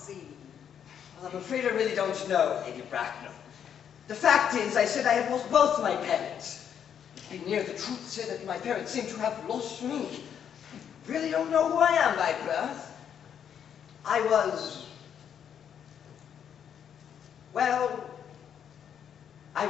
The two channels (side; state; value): right; quieter; 8.5 dB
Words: Well, I'm afraid I really don't know, Lady Bracknell. The fact is, I said I had lost both my parents. To be near the truth, to say that my parents seem to have lost me. I really don't know who I am by birth. I was